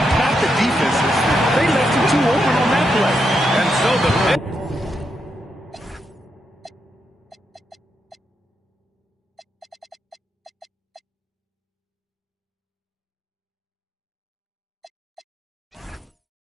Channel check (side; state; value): both; normal; correlation 0.82